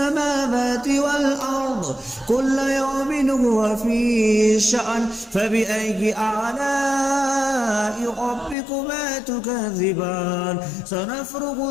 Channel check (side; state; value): right; drops out; at 8.6 s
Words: والأرض كل يوم هو في شأن فبأي آلاء ربكما تكذبان. سنفرغ